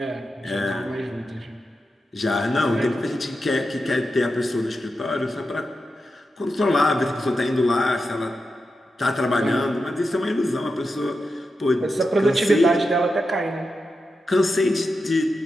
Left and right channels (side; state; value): both; normal; correlation 0.89